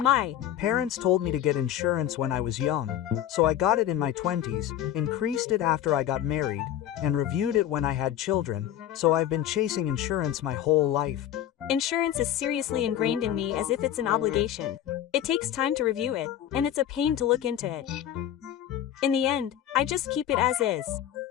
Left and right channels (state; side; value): quieter; right; 11.3 dB